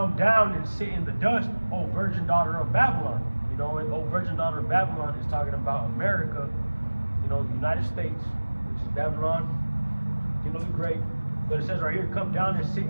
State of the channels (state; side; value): inverted; both; correlation -1.00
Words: down and sit in the dust, O virgin daughter of Babylon." And O virgin daughter of Babylon is talking about America, the United States, which is Babylon, the great. But it says right here, "Come down and sit